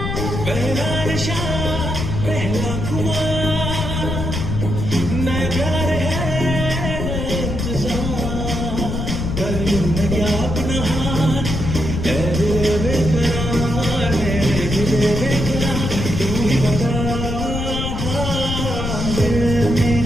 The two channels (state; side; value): noise; left; rumble, 3 dB below the sound